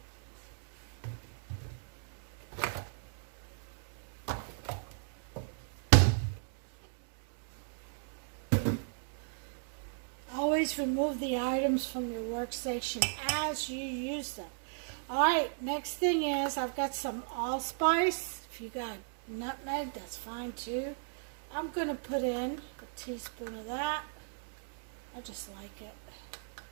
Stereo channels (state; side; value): silent; left; digital silence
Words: Always remove the items from your workstation as you use them. Alright, next thing is I've got some allspice. If you got nutmeg, that's fine too. I'm going to put in a teaspoon of that. I just like it.